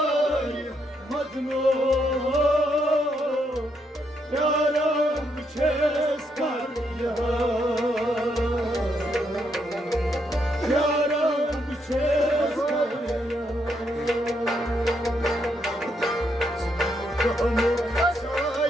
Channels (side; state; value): both; normal; correlation 0.77